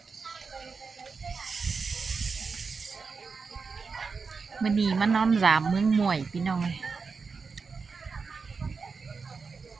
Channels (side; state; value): left; quieter; 4.9 dB